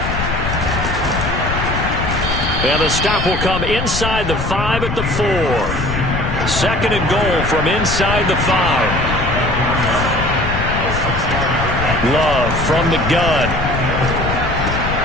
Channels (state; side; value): noise; left; rumble, 4 dB below the sound